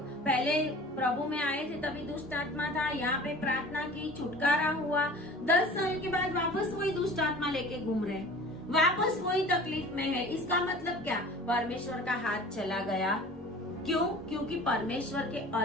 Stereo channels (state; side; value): normal; both; correlation 0.43